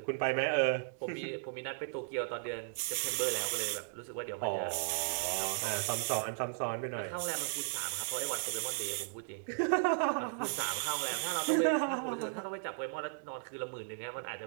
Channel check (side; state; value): left; silent; digital silence